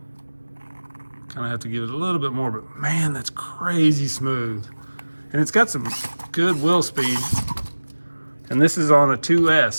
kind of have to give it a little bit more, but man, that's crazy smooth. And it's got some good wheel speed. And this is on a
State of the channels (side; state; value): both; inverted; correlation -1.00